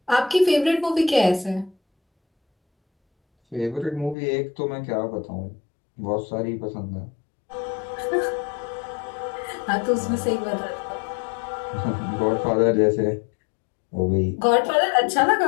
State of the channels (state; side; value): drops out; right; at 4.2 s